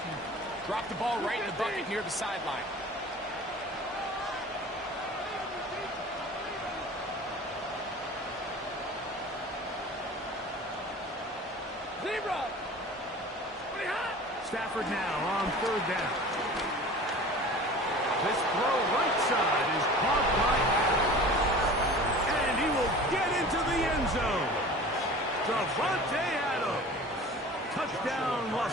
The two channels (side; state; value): both; normal; correlation 0.40